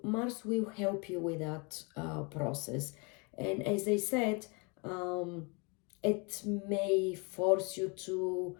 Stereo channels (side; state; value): right; quieter; 31.5 dB